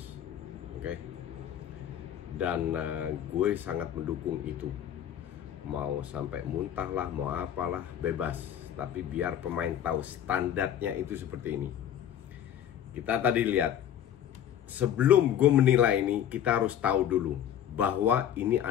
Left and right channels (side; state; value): right; quieter; 10.2 dB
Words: Oke. Dan gue sangat mendukung itu. Mau sampai muntah lah, mau apalah, bebas. Tapi biar pemain tahu standarnya itu seperti ini. Kita tadi lihat, sebelum gue menilai ini, kita harus tahu dulu bahwa ini